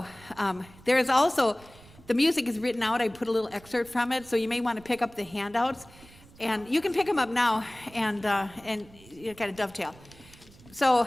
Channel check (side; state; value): right; noise; rumble, 23 dB below the sound